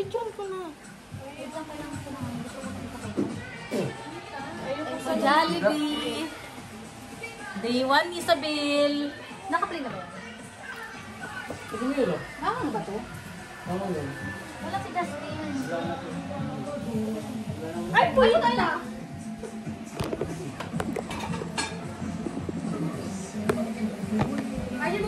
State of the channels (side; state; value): both; identical; correlation 1.00